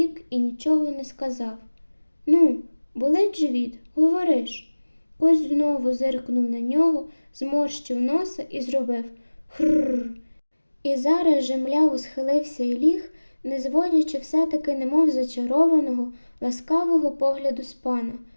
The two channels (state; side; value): inverted; both; correlation -1.00